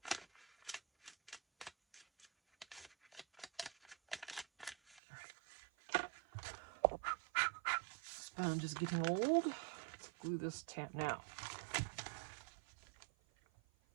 All right. Sponge is getting old. Let's glue this now.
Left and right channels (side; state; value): left; drops out; at 5.0 s